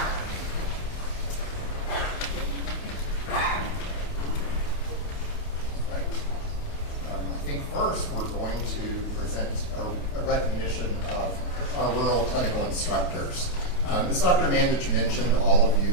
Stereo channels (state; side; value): late; right; 28 ms